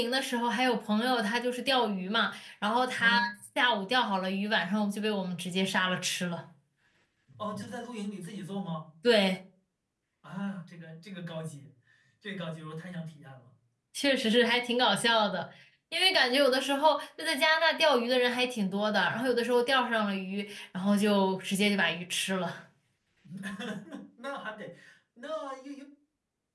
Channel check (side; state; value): both; identical; correlation 1.00